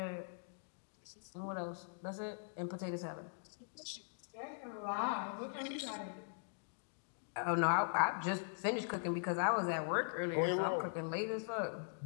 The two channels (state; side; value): silent; right; digital silence